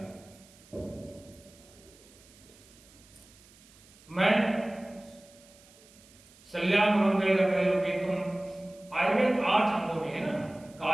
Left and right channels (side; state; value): right; noise; hiss, 25 dB below the sound